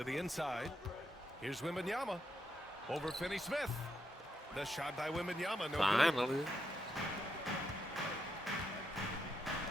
the inside. Here's Wembanyama over Finney-Smith. The shot by Wembanyama. No good. Finally.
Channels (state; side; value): normal; both; correlation 0.82